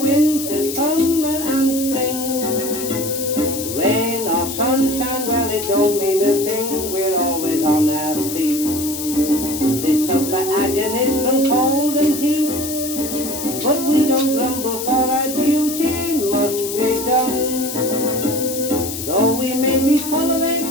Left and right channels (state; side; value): noise; left; hiss, 7 dB below the sound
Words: summer and spring. Rain or sunshine, well, it don't mean a thing. We're always on our feet. They suffer agonies from cold and heat, but we don't grumble, for our duty must be done. Though we may be full of aches,